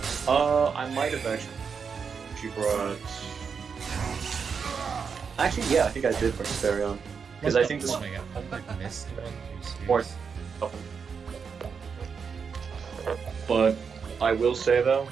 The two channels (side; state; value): left; quieter; 6.0 dB